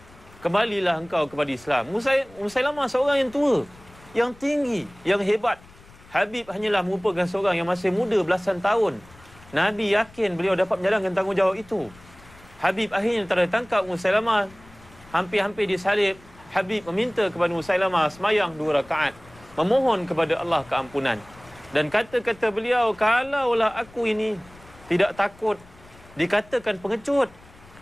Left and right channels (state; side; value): noise; left; rumble, 24 dB below the sound